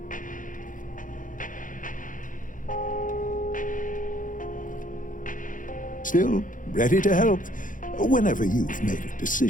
Still ready to help whenever you've made a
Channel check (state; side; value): late; right; 0.38 ms